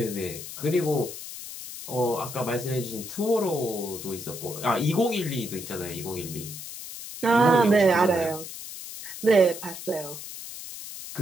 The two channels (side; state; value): left; noise; hiss, 11 dB below the sound